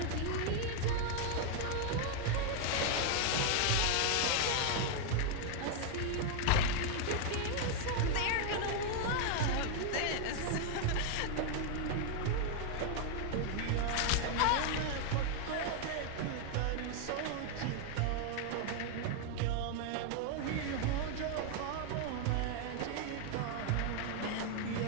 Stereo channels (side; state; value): both; different; correlation 0.00